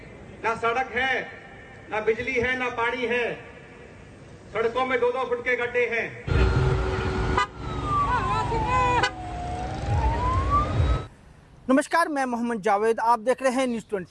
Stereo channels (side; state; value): both; identical; correlation 1.00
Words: ना सड़क है, ना बिजली है, ना पानी है। सड़कों में 2-2 फुट के गड्ढे हैं। नमस्कार, मैं मोहम्मद जावेद, आप देख रहे हैं न्यूज़